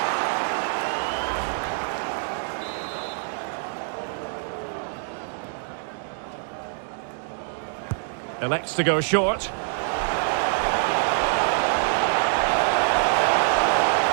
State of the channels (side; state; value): left; silent; digital silence